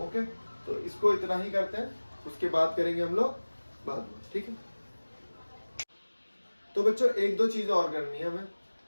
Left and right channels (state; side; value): inverted; both; correlation -1.00